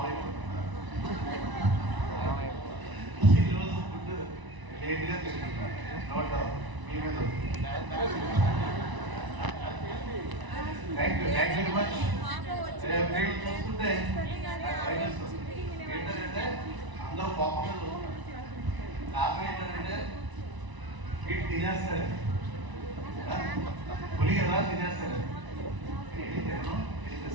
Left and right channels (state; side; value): late; left; 1.0 ms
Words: ఈరోజు ఫుడ్ లేట్గా తింటున్నారు. నోట్ మీ మీద థ్యాంక్ యూ వెరీ మచ్. చూస్తుంటే ఏంటంటే అందరూ కోపంగా చూస్తున్నారు. కారణం ఏంటంటే వీటి తినేస్తారు, పులి కదా తినేస్తారు.